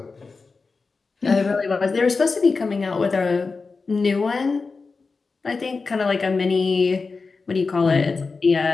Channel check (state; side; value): quieter; right; 4.3 dB